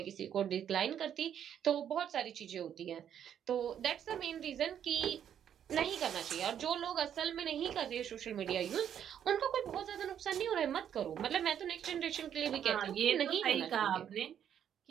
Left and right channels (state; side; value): quieter; left; 9.3 dB